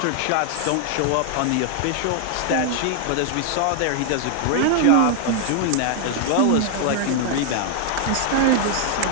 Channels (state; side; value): different; both; correlation 0.00